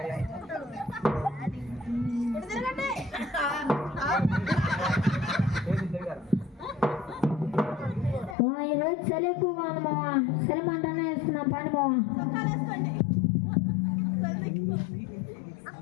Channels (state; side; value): drops out; right; at 8.3 s